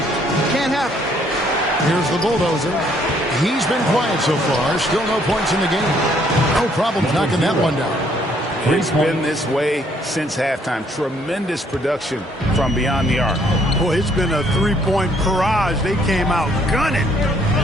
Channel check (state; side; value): normal; both; correlation 0.66